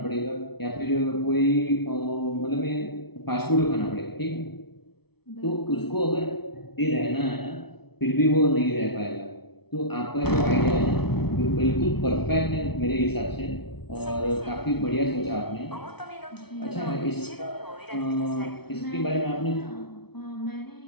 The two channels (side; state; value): right; late; 0.98 ms